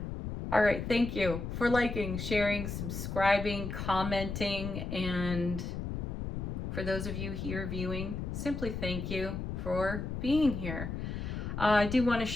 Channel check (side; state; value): left; noise; rumble, 4 dB below the sound